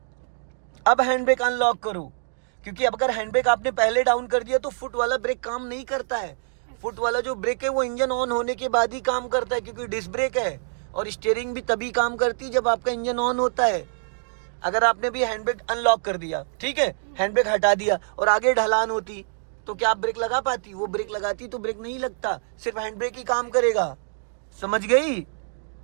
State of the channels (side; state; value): left; silent; digital silence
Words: अब हैंड ब्रेक अनलॉक करो, क्योंकि अब अगर हैंड ब्रेक आपने पहले डाउन कर दिया तो फुट वाला ब्रेक काम नहीं करता है। फुट वाला जो ब्रेक है वो इंजन ऑन होने के बाद ही काम करता है, क्योंकि डिस्क ब्रेक है। और स्टीयरिंग भी तभी काम करती है जब आपका इंजन ऑन होता है। अगर आपने भी हैंड ब्रेक अनलॉक कर दिया, ठीक है, हैंड ब्रेक हटा दिया और आगे ढलान होती तो क्या आप ब्रेक लगा पाती? वो ब्रेक लगाती तो ब्रेक नहीं लगता, सिर्फ हैंड ब्रेक ही काम करेगा। समझ गई?